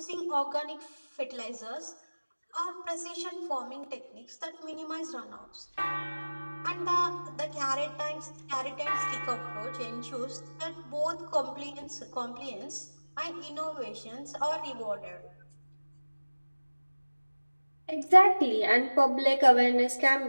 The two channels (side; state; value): both; inverted; correlation -1.00